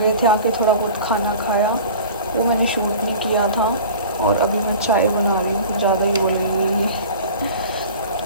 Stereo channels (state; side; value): inverted; both; correlation -0.40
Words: थे। आके थोड़ा बहुत खाना खाया, वो मैंने शूट नहीं किया था। और अभी मैं चाय बना रही हूँ, ज़्यादा ही बोल रही हूँ।